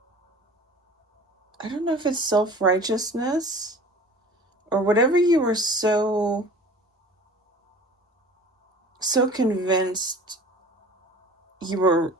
I don't know if it's self-righteousness or whatever you were so convinced you were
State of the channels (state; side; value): normal; both; correlation 0.43